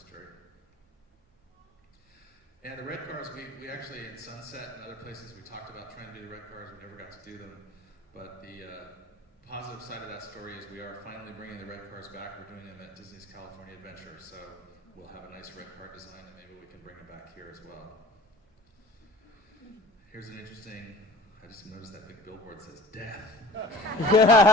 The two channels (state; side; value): normal; both; correlation 0.43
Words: And the red cars, we actually in Sunset and other places we talked about trying to do the red cars. We never got to do them, but the positive side of that story is we are finally bringing the red cars back. We're doing them at Disney's California Adventure, so we'll have a nice red car design, and maybe we can bring them back here as well. Here's an interesting, I just noticed that big billboard says death.